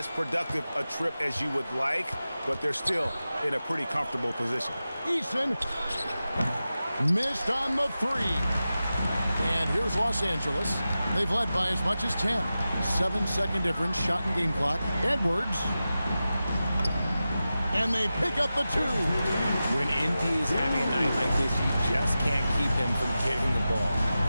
productive a trip as you would like, but they're still in a pretty comfortable position. Eason missed on the three. And here's Los Angeles. They've led by as much as 10. 7-second difference, shot and game clock. Edwards. And they pick up the two. When NP is having a night like this, you just can't keep him from getting the ball.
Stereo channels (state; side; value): inverted; both; correlation -0.93